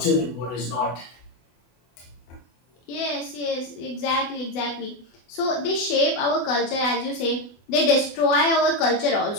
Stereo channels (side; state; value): right; late; 24 ms